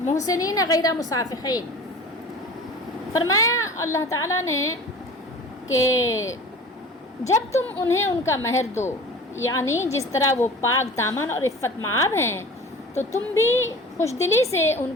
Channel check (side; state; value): both; normal; correlation 0.40